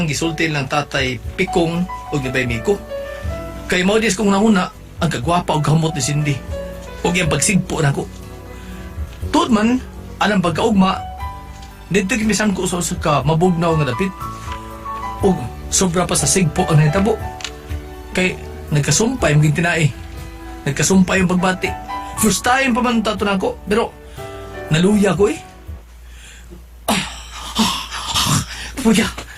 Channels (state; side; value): identical; both; correlation 1.00